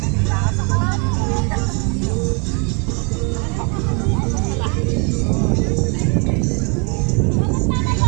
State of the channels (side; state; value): left; quieter; 34.7 dB